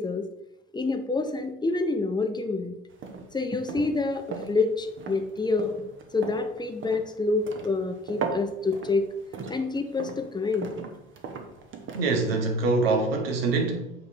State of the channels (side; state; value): both; normal; correlation 0.52